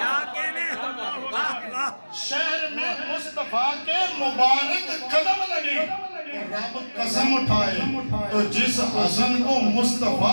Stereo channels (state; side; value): inverted; both; correlation -1.00